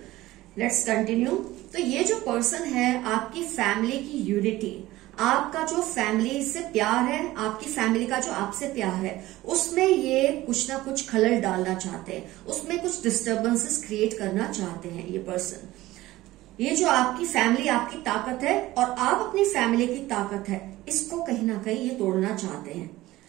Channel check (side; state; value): left; quieter; 17.2 dB